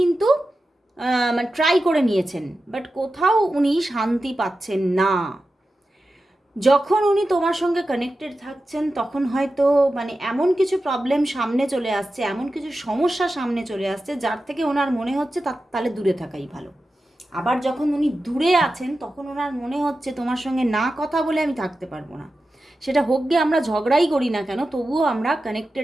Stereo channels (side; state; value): both; normal; correlation 0.92